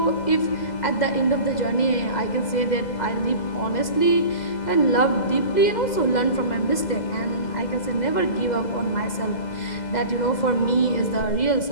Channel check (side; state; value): right; late; 2.0 ms